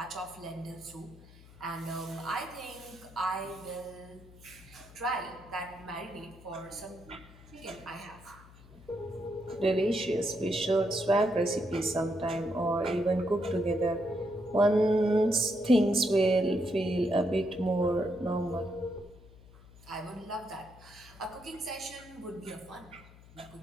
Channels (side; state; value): left; noise; hum, 22 dB below the sound